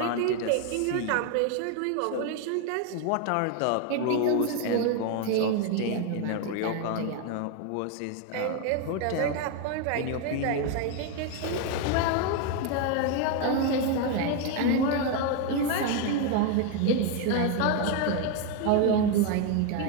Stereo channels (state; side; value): different; both; correlation 0.01